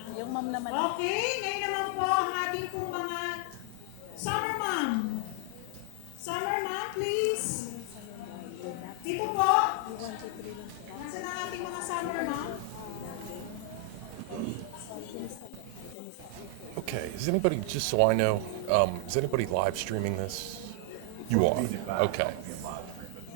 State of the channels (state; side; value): different; both; correlation 0.00